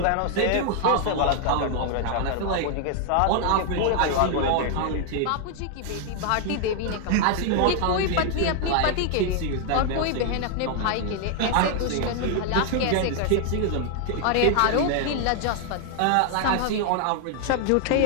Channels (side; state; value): both; different; correlation 0.00